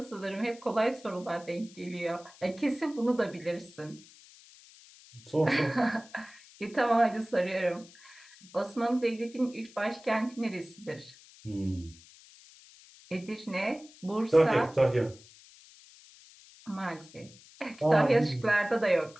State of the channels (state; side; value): noise; left; hiss, 23 dB below the sound